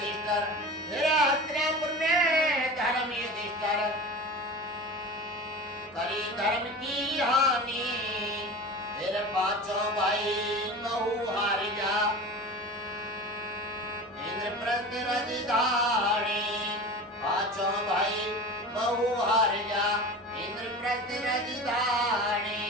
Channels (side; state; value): both; normal; correlation 0.33